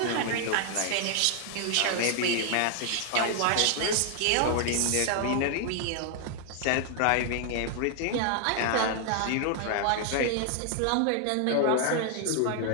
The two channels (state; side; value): different; both; correlation 0.00